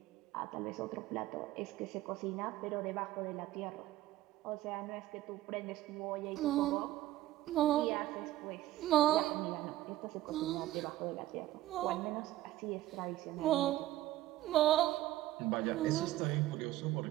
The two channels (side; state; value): left; quieter; 15.3 dB